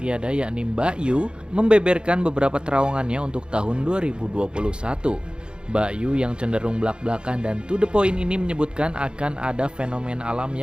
yakni Mbak Yu membeberkan beberapa terawangannya untuk tahun 2021. Mbak Yu yang cenderung belak-belakan dan to the point ini menyebutkan akan ada fenomena alam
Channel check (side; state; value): left; late; 0.052 ms